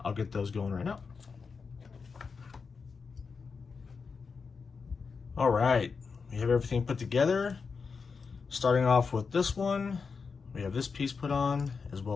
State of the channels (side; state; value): right; quieter; 5.2 dB